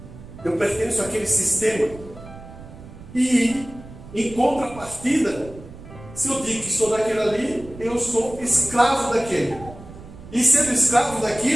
Eu pertenço àquele sistema. E, em contrapartida, se eu digo que sou daquele ali, eu sou escravo daquele. E sendo escravo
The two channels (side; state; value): right; noise; rumble, 17 dB below the sound